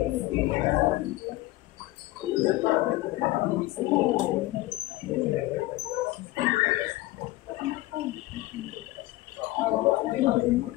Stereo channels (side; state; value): right; quieter; 18.1 dB